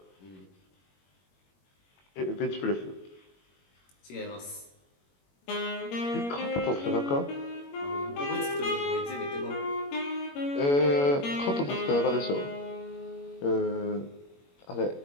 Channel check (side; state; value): right; late; 21 ms